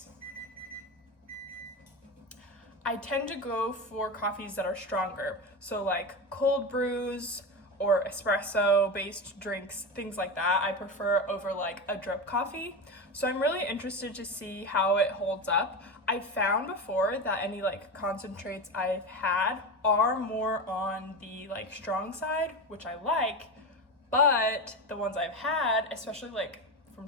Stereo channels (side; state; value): both; normal; correlation 0.20